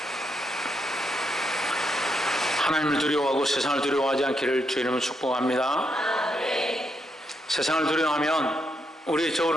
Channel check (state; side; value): normal; both; correlation 0.79